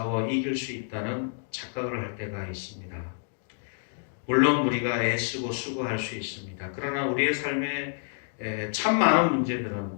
이길 수 있다는 착각을 할 때가 있습니다. 물론 우리가 애쓰고 수고할 수 있습니다. 그러나 우리의 삶에 참 많은 문제들은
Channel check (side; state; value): right; silent; digital silence